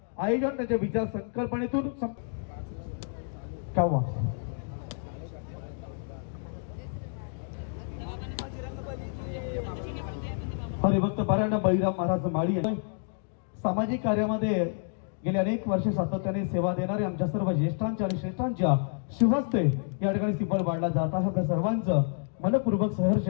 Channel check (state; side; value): silent; right; digital silence